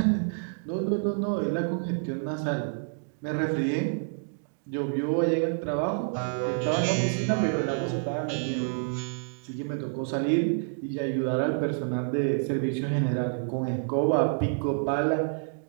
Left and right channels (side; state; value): left; silent; digital silence